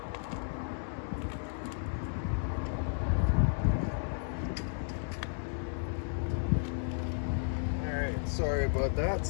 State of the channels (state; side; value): silent; right; digital silence